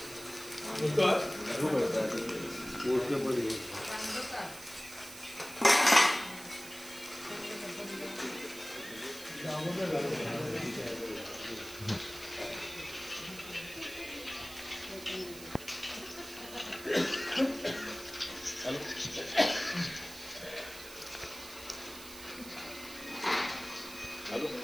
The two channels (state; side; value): noise; right; hiss, 14 dB below the sound